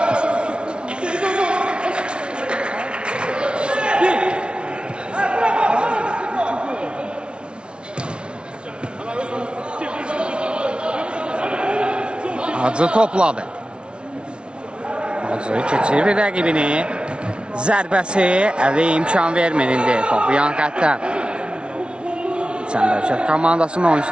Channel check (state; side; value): late; left; 0.057 ms